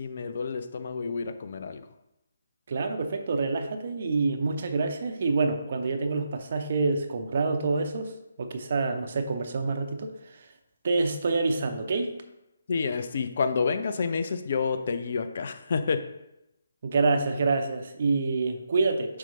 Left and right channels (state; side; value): inverted; both; correlation -0.81